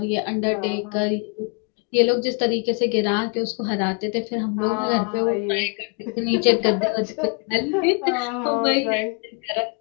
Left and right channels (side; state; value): right; quieter; 36.2 dB